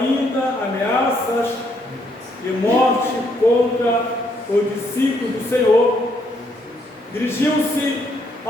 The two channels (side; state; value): both; normal; correlation 0.72